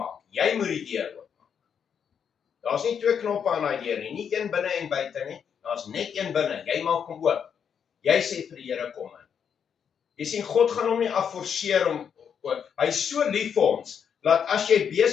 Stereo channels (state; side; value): quieter; right; 7.5 dB